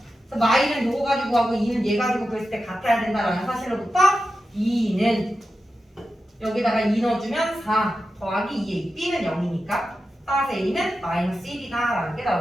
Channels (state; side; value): normal; both; correlation 0.91